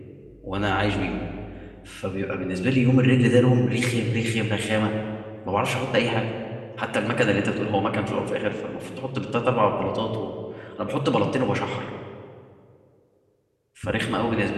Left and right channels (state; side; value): identical; both; correlation 1.00